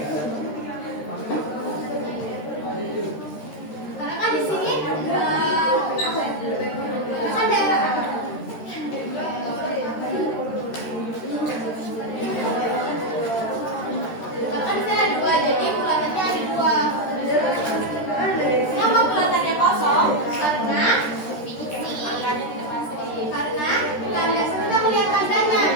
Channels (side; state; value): right; late; 13 ms